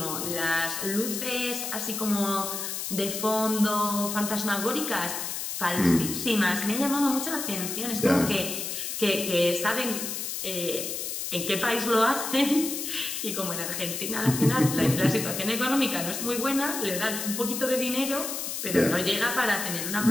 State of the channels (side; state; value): left; noise; hiss, 4 dB below the sound